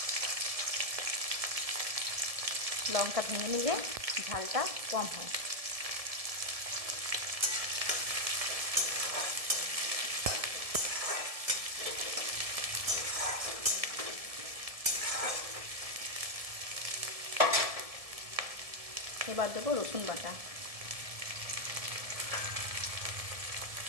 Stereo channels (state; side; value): late; left; 1.7 ms